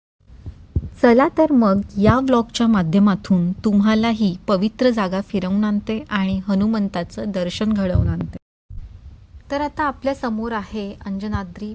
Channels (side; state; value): both; identical; correlation 1.00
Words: चला तर मग या व्लॉगच्या माध्यमातून तुम्हाला ही पवित्र जागा फिरवून आणते आणि हनुमंताचं दर्शन घडवून आणते. तर आता आपल्या समोर आहे अंजनाद्री